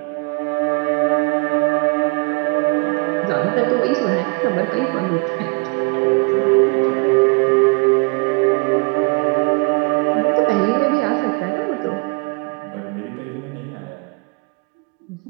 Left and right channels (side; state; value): left; quieter; 31.1 dB